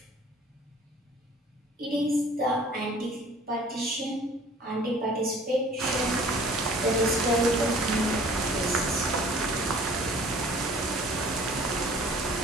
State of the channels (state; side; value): normal; both; correlation 0.50